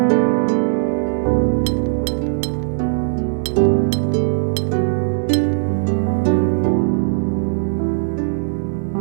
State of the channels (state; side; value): silent; left; digital silence